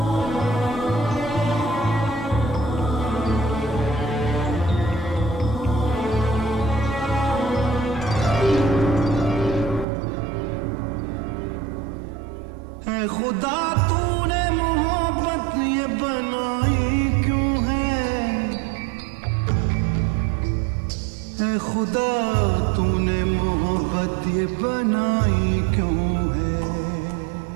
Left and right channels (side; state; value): left; drops out; at 9.9 s